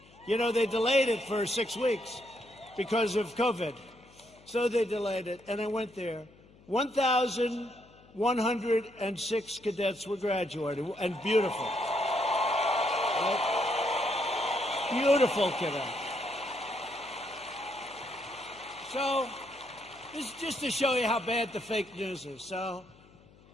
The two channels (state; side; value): noise; left; hum, 26 dB below the sound